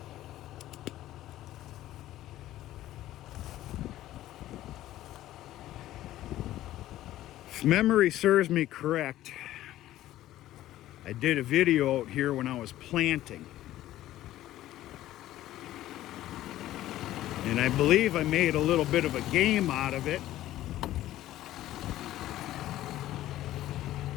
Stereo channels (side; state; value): right; quieter; 14.3 dB